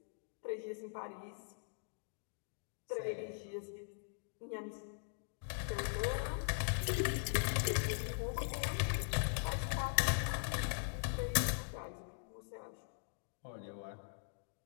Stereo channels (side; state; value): right; silent; digital silence